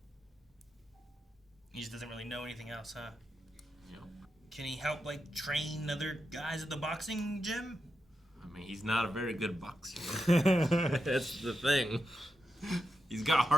He just doesn't really know anything else, huh? Yep. Can he help, like, train other guys at the boxing gym? I mean, he's not a very good boxer. That's the thing. He's got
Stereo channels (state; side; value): normal; both; correlation 0.87